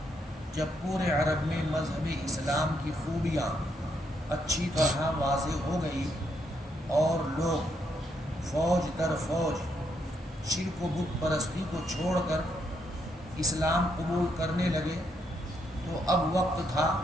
جب پورے عرب میں مذہب اسلام کی خوبیاں اچھی طرح واضح ہو گئی اور لوگ فوج در فوج شرک و بت پرستی کو چھوڑ کر اسلام قبول کرنے لگے، تو اب وقت تھا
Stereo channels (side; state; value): both; normal; correlation 0.76